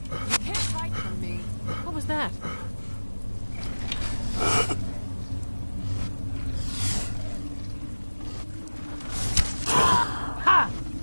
You can't hide from me. What was that? Ha!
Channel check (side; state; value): both; inverted; correlation -1.00